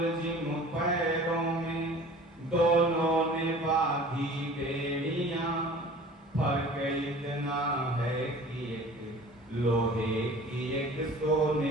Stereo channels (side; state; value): both; normal; correlation 0.44